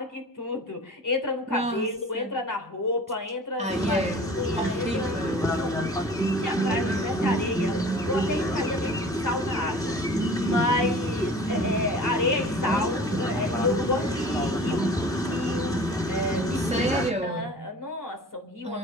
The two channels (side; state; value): both; normal; correlation 0.42